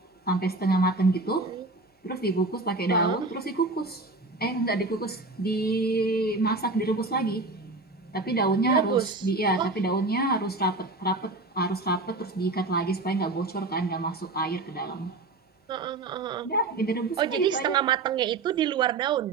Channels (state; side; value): quieter; left; 3.3 dB